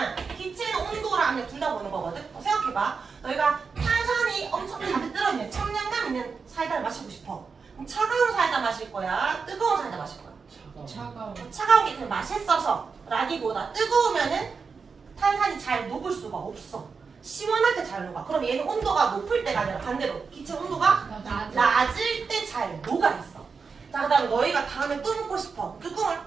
기체는 온도랑 압력 둘 다 보는 거거든. 생각해봐. 너희가 탄산이 엄청 가득 들어있는 청량감 있는 사이다를 마시고 싶어. 그럼 차가운 사이다 마실 거야? 뜨거운 사이다 마실 거야? 차가운 게 그냥 맛있어서 라기보다 뜨거우면은 탄산이 잘 녹을 수가 없어. 시원할 때 잘 녹아. 그럼 얘는 온도가 높을 때가 아니라 반대로 기체 온도가 낮을 때 잘 녹아 있어. 자, 그 다음에 너희가 다음에 또 먹고 싶어. 뚜껑을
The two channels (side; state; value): left; quieter; 5.2 dB